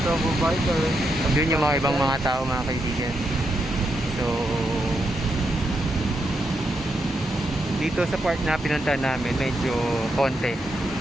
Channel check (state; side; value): normal; both; correlation 0.82